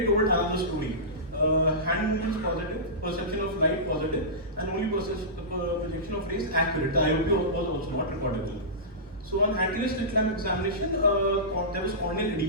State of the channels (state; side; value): normal; both; correlation -0.18